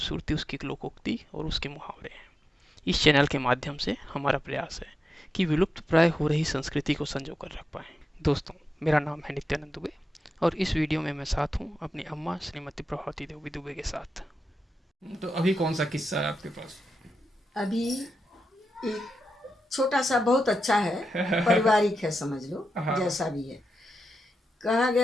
उसकी लोकोक्ति और उसके मुहावरे हैं। इस चैनल के माध्यम से हमारा प्रयास है कि विलुप्त प्राय हो रही संस्कृति को संजो कर रख पाएं। दोस्तों, मेरा नाम है नित्यानंद दुबे और इस वीडियो में मैं साथ हूँ अपनी अम्मा श्रीमती प्रभावती देवी दुबे के साथ। तो अभी कौन सा किस्सा है आपके पास? अभी एक छोटा सा बहुत अच्छा है, पारिवारिक है समझ लो, हाँ। जैसा भी है। कहा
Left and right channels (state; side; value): normal; both; correlation 0.88